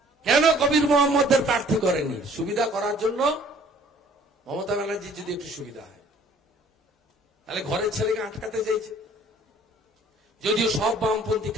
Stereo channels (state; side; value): normal; both; correlation 0.55